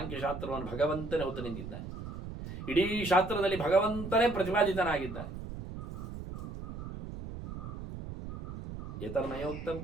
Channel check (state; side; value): noise; right; rumble, 9 dB below the sound